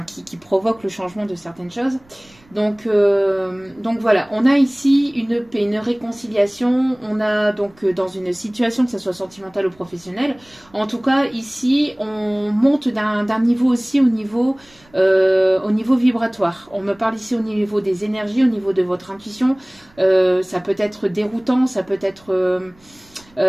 qui provoque le changement de certaines choses. Donc voilà, on a ici une paix, une réconciliation, on a donc dans une situation, que ce soit sentimentale ou professionnelle, en tout cas ici on monte d'un niveau aussi au niveau vibratoire. On me parle ici au niveau des énergies, au niveau de votre intuition, ça peut être déroutant, ça peut être...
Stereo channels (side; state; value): right; noise; rumble, 29 dB below the sound